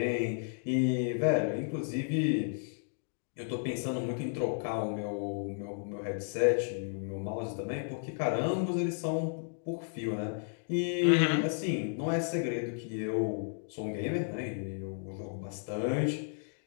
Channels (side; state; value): right; silent; digital silence